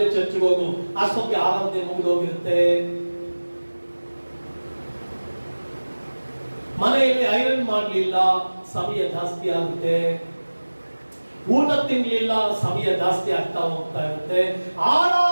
ಚರ್ಚ್ಗೆ ಹೋಗು, ಅಷ್ಟೊತ್ತಿಗೆ ಆರಾಧನೆ ಮುಗಿದೋಗಿರುತ್ತೆ. ಮನೆಯಲ್ಲಿ ಐರನ್ ಮಾಡ್ಲಿಲ್ಲ, ಸಮಯ ಜಾಸ್ತಿ ಆಗುತ್ತೆ. ಊಟ ತಿನ್ಲಿಲ್ಲ, ಸಮಯ ಜಾಸ್ತಿ ಆಗ್ತಾ ಹೋಗ್ತಾ ಇರುತ್ತೆ.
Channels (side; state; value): both; inverted; correlation -1.00